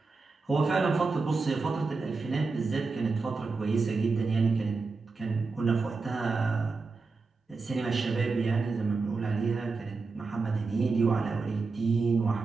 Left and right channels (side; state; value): left; quieter; 4.2 dB